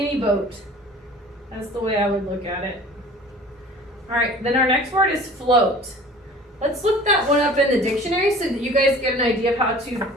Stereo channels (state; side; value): normal; both; correlation 0.45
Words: boat. That's the way I would look at it. All right, then our next word is float. Let's look that one up in the dictionary so that you guys get an idea of how to